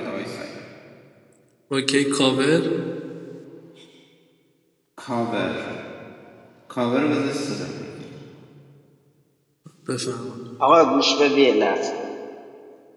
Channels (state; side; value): identical; both; correlation 1.00